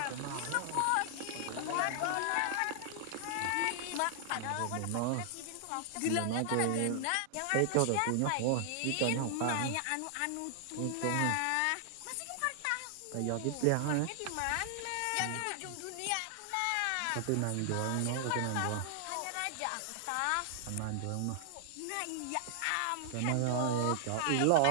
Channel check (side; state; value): both; different; correlation -0.01